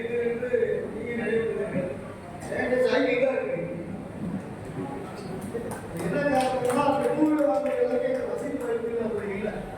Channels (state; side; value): identical; both; correlation 1.00